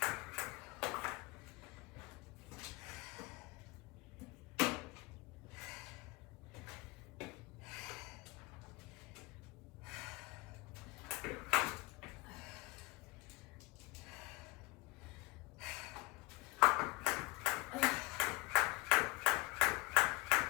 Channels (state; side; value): quieter; right; 23.8 dB